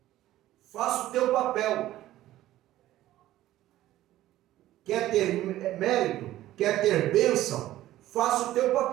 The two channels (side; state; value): left; quieter; 14.5 dB